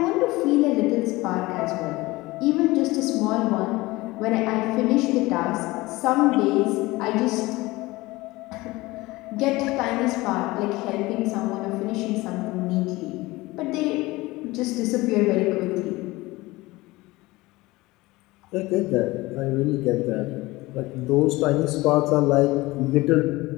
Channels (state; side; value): quieter; right; 20.6 dB